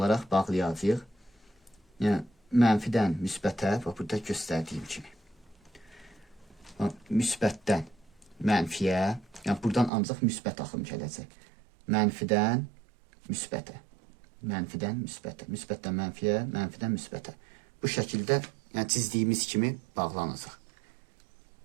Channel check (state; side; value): drops out; left; at 9.9 s